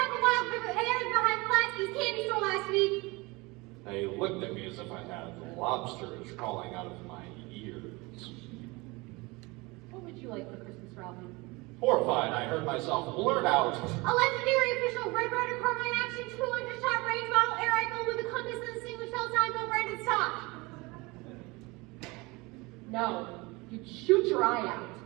of wild berries behind Pulaski's candy store last week. They looked at me as if I had lobsters crawling out of my ears. What would you like for Christmas, Ralphie? Horrified, I heard myself blurt out, A legendary official Red Rider Carbine Action 200-shot range model air rifle with a compass and distinguished Calzone no branded stock. No, you'd shoot your eye out.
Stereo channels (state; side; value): quieter; left; 24.4 dB